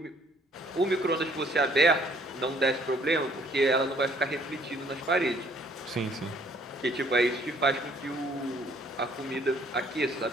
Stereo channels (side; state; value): both; normal; correlation 0.61